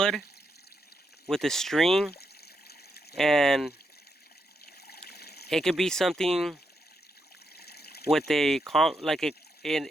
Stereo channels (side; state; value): both; normal; correlation 0.81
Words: with a string, and it could be something with like